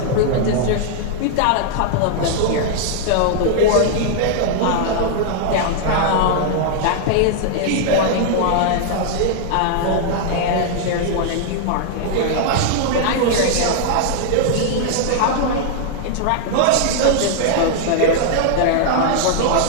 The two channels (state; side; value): different; both; correlation 0.00